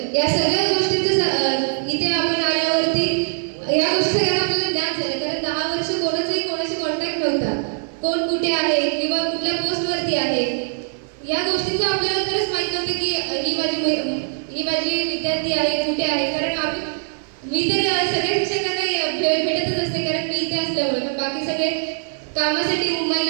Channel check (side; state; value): left; silent; 60 dB below the other